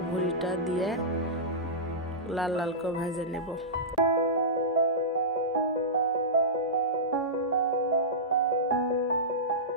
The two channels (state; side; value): normal; both; correlation -0.16